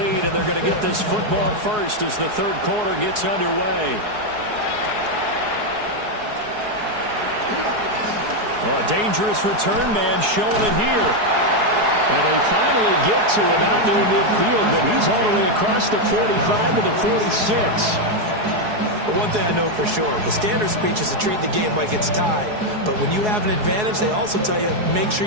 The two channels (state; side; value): late; left; 4.7 ms